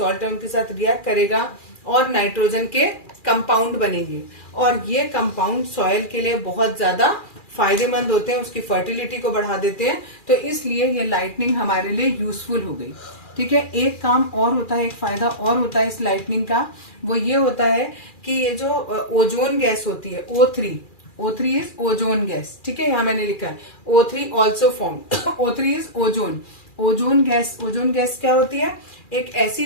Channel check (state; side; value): late; right; 2.4 ms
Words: है उनके साथ रिएक्ट करेगा और नाइट्रोजन के कंपाउंड बनेंगे, और ये कंपाउंड सॉइल के लिए बहुत ज्यादा फायदेमंद होते हैं, उसकी फर्टिलिटी को बढ़ा देते हैं। तो इसलिए ये लाइटनिंग हमारे लिए यूजफुल हो गई। ठीक है, एक काम और होता है, एक फायदा और होता है इस लाइटनिंग का, वो ये होता है कि ये जो ओजोन गैस होती है O3 इज ओजोन गैस। ठीक है, यहाँ मैंने लिखा है O3 also form, O3 is ozone. Ozone gas क्या होती है? एक ऐसी